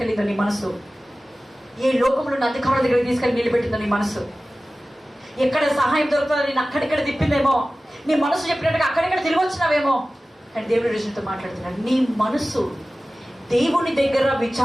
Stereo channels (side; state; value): both; normal; correlation 0.96